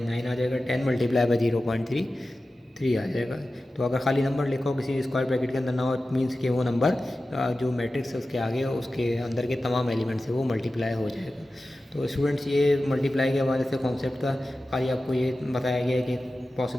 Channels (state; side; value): normal; both; correlation 0.94